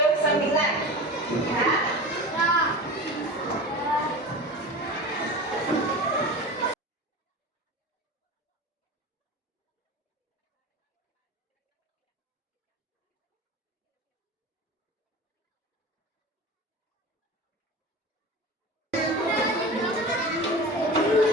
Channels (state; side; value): normal; both; correlation 0.32